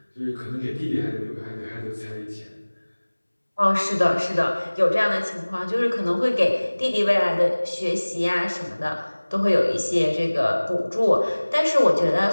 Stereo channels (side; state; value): both; inverted; correlation -1.00